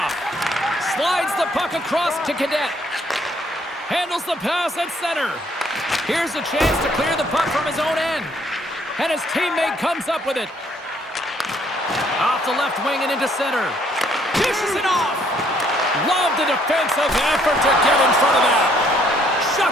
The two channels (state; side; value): normal; both; correlation 0.66